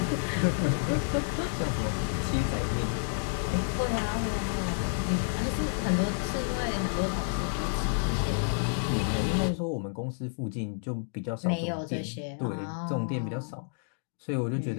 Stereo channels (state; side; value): silent; right; digital silence